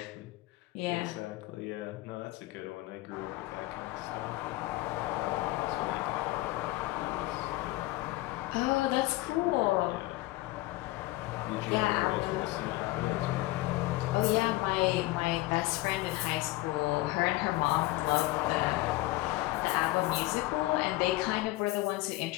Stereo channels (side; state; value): right; quieter; 18.8 dB